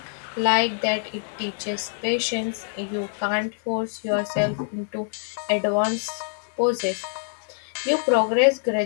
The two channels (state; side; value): silent; right; 62 dB below the other